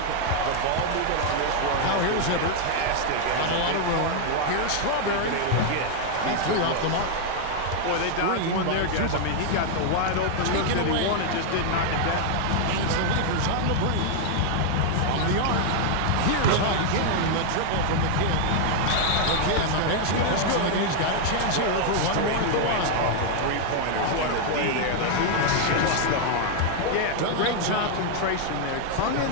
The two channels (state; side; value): different; both; correlation 0.00